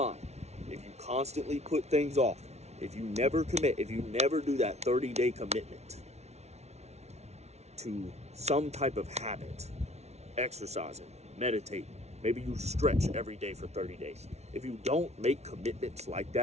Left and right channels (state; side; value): late; left; 0.31 ms